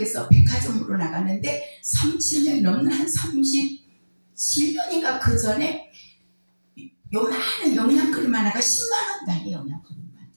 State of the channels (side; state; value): both; inverted; correlation -1.00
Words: 백화점으로 나가는데 30년 넘는 한 37년인가 그 전에 요만한 영양크림 하나가 10만 원 단위 영양크림 만들